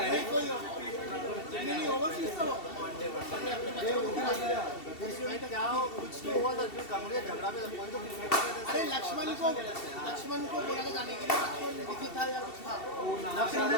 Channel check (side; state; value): right; late; 2.7 ms